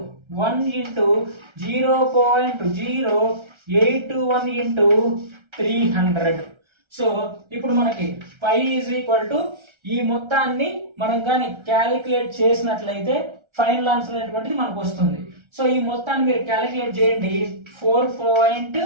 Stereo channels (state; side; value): late; left; 1.3 ms